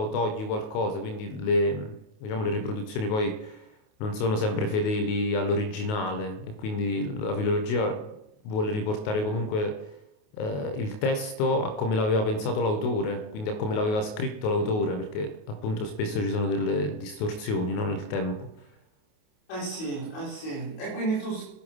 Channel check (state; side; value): late; right; 28 ms